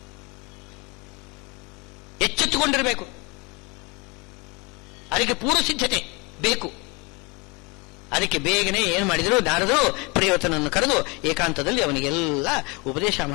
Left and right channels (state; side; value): quieter; right; 28.1 dB